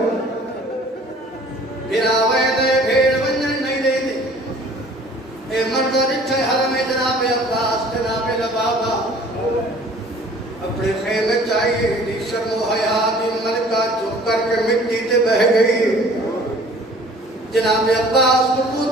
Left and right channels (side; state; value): both; normal; correlation 0.51